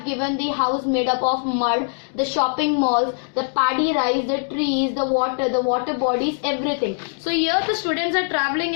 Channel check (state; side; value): silent; right; 64 dB below the other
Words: given the house made up of mud, the shopping malls, the paddy rice, the trees, the water bodies, everything. So here the students are traveling